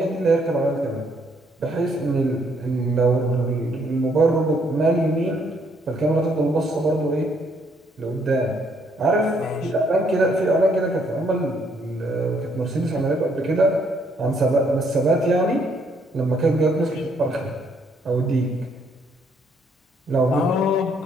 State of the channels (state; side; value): normal; both; correlation 0.69